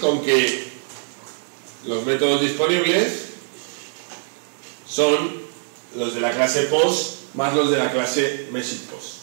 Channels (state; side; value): silent; left; digital silence